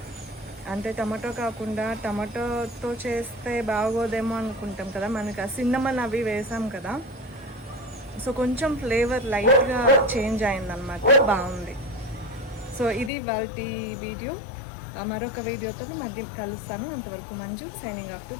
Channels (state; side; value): drops out; right; at 13.1 s